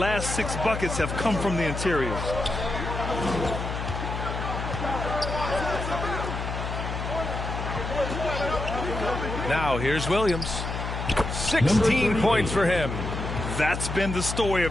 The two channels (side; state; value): left; noise; hum, 4 dB below the sound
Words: 6 buckets have come from the interior. Now here's Williams. 16 points for him. That's been the story